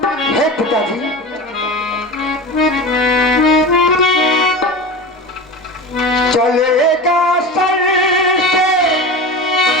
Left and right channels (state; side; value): normal; both; correlation 0.29